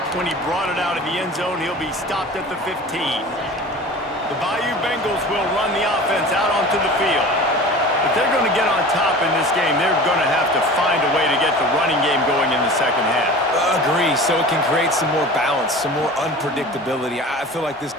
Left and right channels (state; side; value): normal; both; correlation 0.38